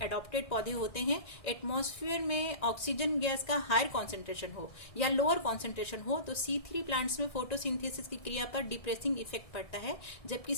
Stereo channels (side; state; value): right; late; 1.7 ms